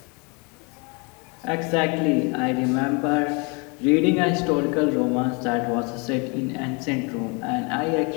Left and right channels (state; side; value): quieter; right; 31.7 dB